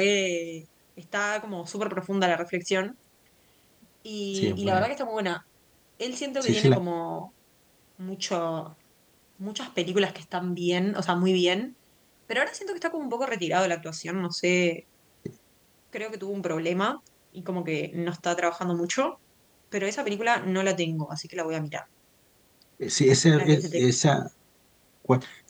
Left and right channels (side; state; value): both; identical; correlation 1.00